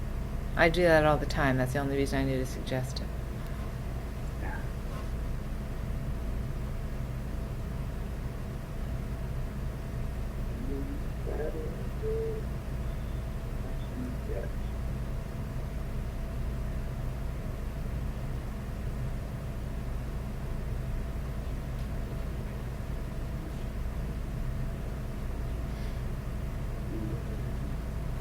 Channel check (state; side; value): identical; both; correlation 1.00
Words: I do that all the time. That's the only reason I need to suggest it. That's not it.